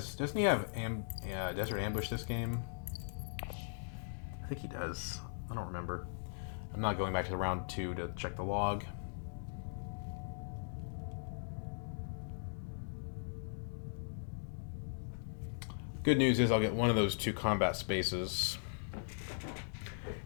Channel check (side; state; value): right; silent; digital silence